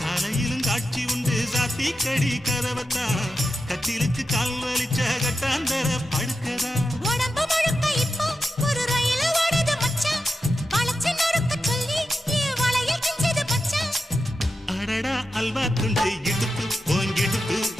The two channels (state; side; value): normal; both; correlation 0.89